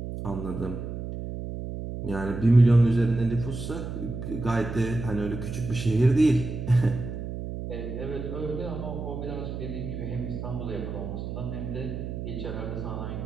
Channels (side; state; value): right; noise; hum, 6 dB below the sound